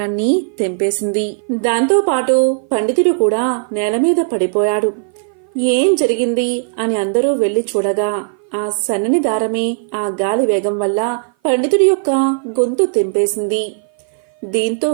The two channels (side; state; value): left; silent; 56 dB below the other